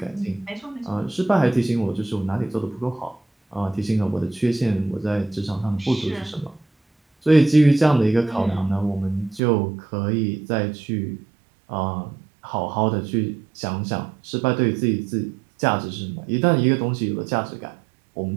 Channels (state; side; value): drops out; left; at 9.4 s